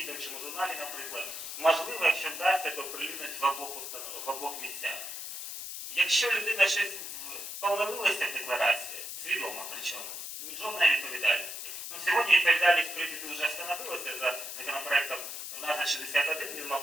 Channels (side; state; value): left; noise; hiss, 7 dB below the sound